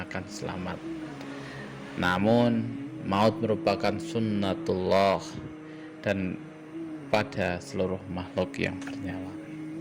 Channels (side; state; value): both; identical; correlation 1.00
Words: akan selamat. Namun maut merupakan sunnatullah dan pada seluruh makhluk yang bernyawa.